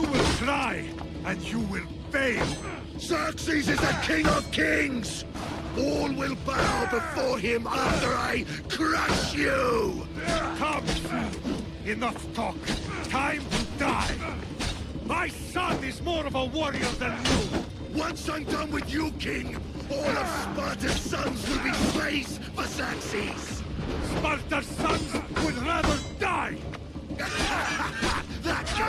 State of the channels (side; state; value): both; identical; correlation 1.00